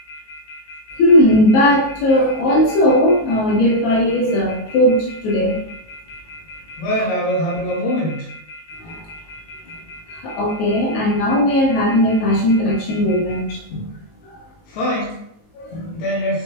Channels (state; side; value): late; right; 19 ms